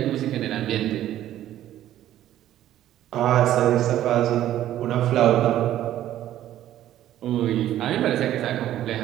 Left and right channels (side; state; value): left; quieter; 12.6 dB